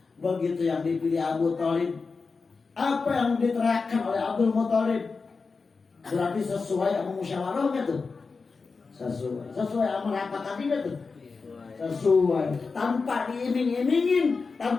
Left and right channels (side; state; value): right; quieter; 4.5 dB